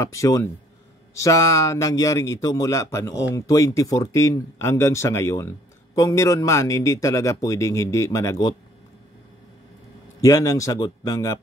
sa nangyaring ito mula pa noong 2014 hanggang sa ngayon. Kung meron man, hindi talaga pwedeng hindi managot. Yan ang sagot ng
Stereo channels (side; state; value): both; normal; correlation 0.61